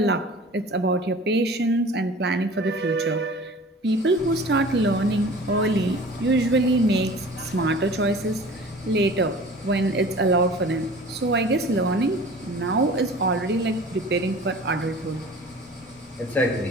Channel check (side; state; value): both; normal; correlation 0.43